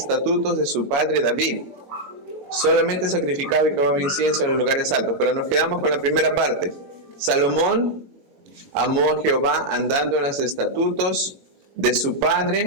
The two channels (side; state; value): left; late; 22 ms